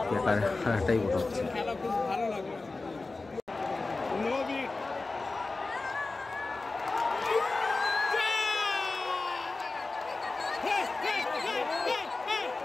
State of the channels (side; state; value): right; quieter; 3.5 dB